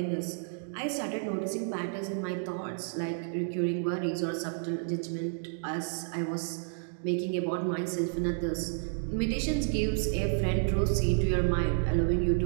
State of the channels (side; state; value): left; silent; digital silence